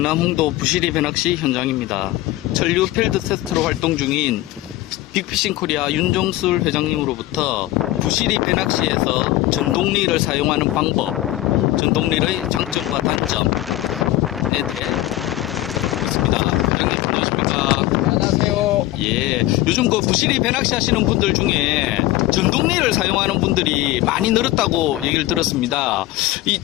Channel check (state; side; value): quieter; right; 16.1 dB